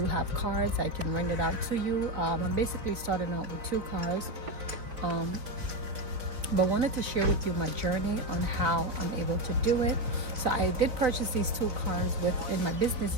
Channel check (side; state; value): left; late; 4.1 ms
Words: have cars. I can rent it out to you. I'm basically starting out with 2 cars, but wanted to share with you my journey on how I'm able to do it. So I did purchase these 2 cars in my business